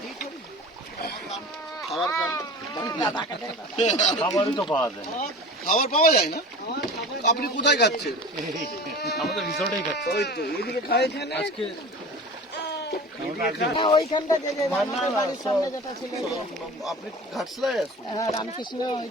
খাবার খান। খাবারই তো পাওয়া যায়। খাবার পাওয়া যায় না? আপনি কোথায় খাচ্ছেন? আমাদের রিসর্টেই খাচ্ছে ওই তো এইদিকে খাই এখানে। আজকে। আপনি ঘাটশিলায় আছেন?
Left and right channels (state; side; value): normal; both; correlation 0.37